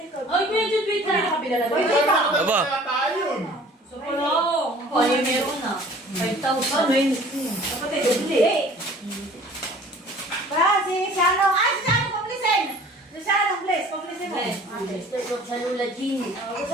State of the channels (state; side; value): normal; both; correlation 0.49